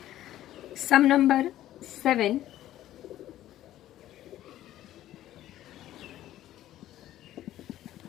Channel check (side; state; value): right; quieter; 13.4 dB